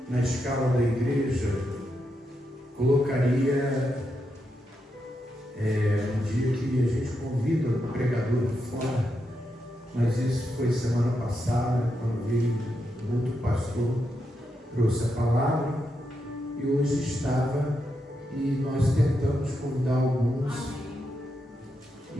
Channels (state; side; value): normal; both; correlation 0.84